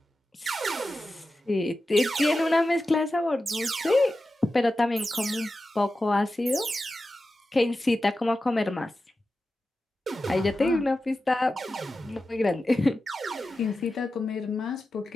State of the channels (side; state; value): both; normal; correlation 0.92